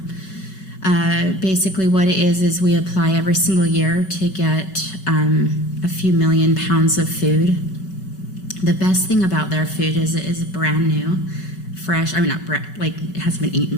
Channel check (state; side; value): late; right; 5.3 ms